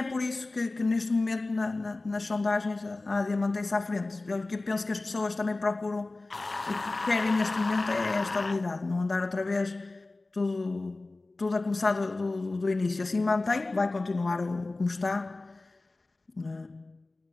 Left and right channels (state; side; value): quieter; right; 3.2 dB